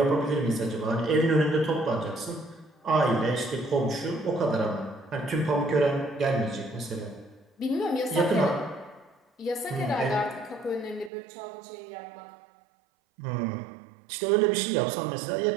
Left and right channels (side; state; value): left; drops out; at 11.1 s